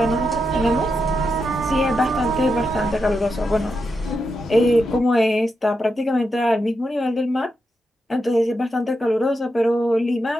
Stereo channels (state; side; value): normal; both; correlation 0.86